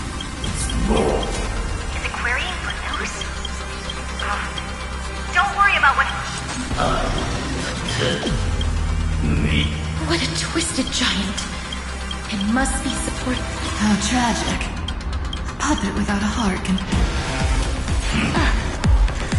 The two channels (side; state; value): both; identical; correlation 1.00